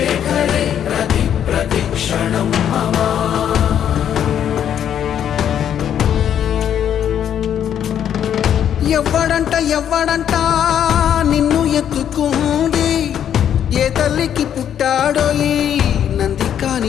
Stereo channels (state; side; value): quieter; right; 9.5 dB